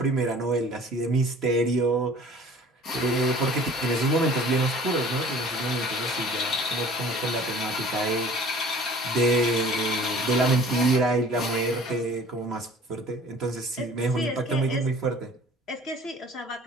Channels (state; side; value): normal; both; correlation 0.48